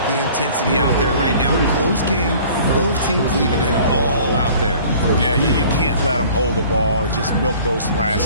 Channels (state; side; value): inverted; both; correlation -0.49